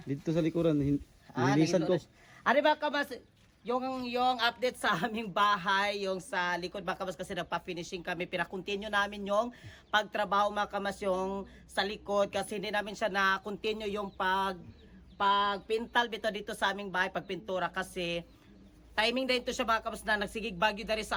Dito sa likuran, nilisan ko. Ari mga kabas, yung update sa aming bahay, yung sa likod mga kabas kasi nagpa-finishing kami. Pinakontinue namin yung pagtrabaho mga kabas yung sa likod kasi hindi namin siya na-continue yung pagpintal dito sa aming bahay, pagpintura kasi timing din to siya mga kabas na nagsigig bagyo dari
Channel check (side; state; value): both; identical; correlation 1.00